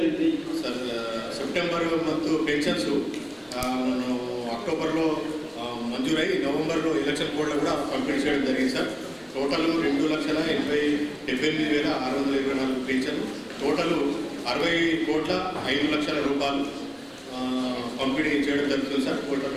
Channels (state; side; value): identical; both; correlation 1.00